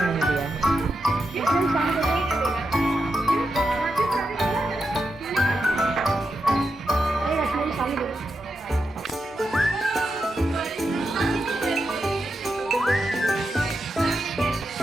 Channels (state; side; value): normal; both; correlation 0.87